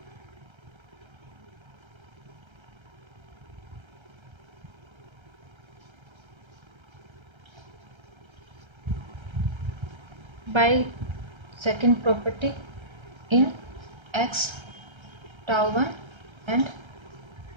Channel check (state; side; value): late; left; 1.3 ms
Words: by second property in X tau 1 and